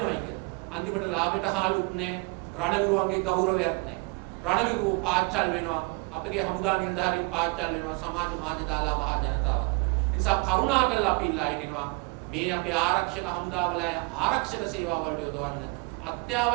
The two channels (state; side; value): quieter; left; 29.5 dB